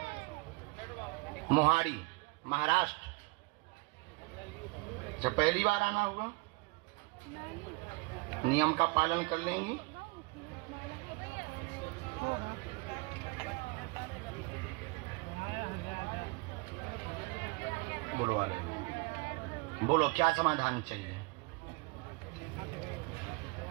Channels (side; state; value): left; quieter; 26.6 dB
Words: मोहाड़ी, महाराष्ट्र। जब पहली बार आना हुआ, नियम का पालन कर लेंगी। बोलो वाले, बोलो क्या समाधान चाहिए?